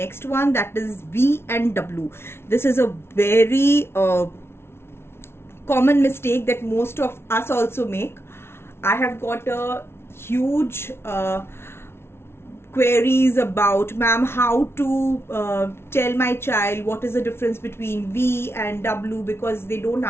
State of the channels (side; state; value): right; late; 0.12 ms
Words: one, that is V and W. This is a very common mistake that most of us also make. I have got a huge queries about, ma'am, how to tell my child what is the difference between V and W, because they don't